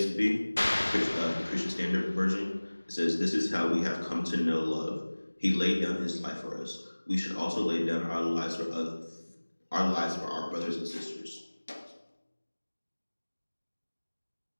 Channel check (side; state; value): both; inverted; correlation -1.00